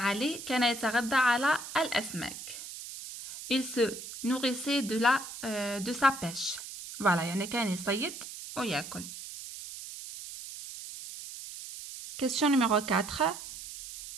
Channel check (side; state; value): right; noise; hiss, 11 dB below the sound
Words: كان يتغذى على الأسماك. Il se nourrissait de sa pêche. Voilà, يعني كان يصيد ويأكل. Question numéro 4.